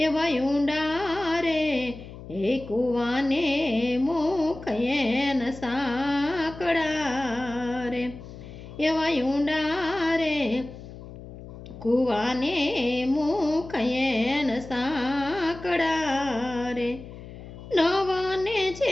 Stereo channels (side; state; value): left; noise; hum, 14 dB below the sound